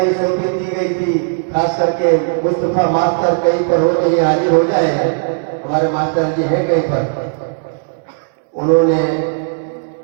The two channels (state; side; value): silent; left; 69 dB below the other